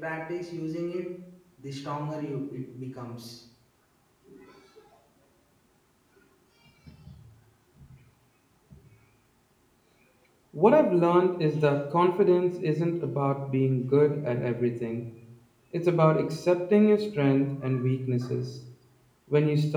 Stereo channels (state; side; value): identical; both; correlation 1.00